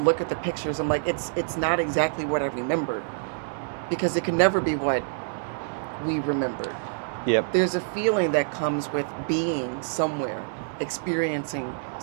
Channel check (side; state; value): left; silent; digital silence